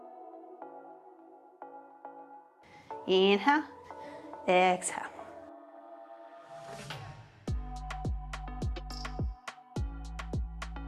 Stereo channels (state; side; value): identical; both; correlation 1.00